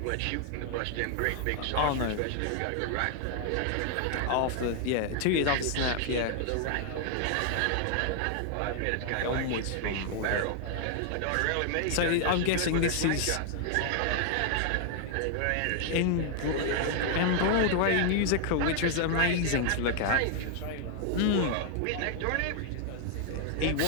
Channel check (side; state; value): both; different; correlation 0.00